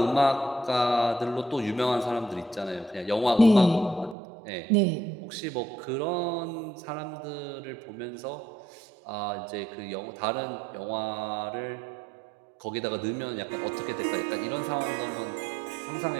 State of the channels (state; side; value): drops out; left; at 4.2 s